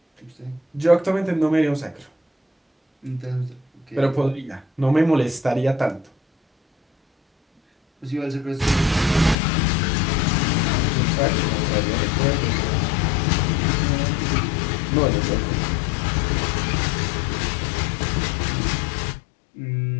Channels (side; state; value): right; drops out; at 9.3 s